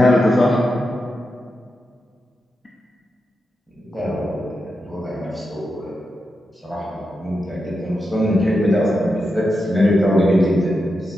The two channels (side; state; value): both; normal; correlation 0.88